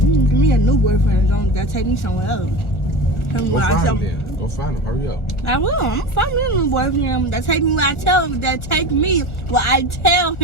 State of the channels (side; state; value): right; late; 1.4 ms